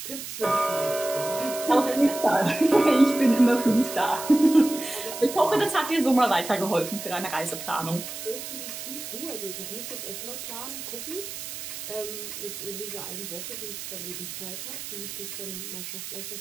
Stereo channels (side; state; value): right; noise; hiss, 9 dB below the sound